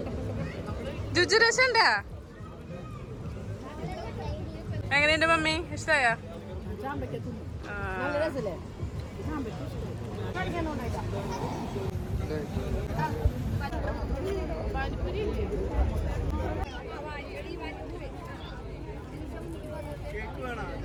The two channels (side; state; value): both; identical; correlation 1.00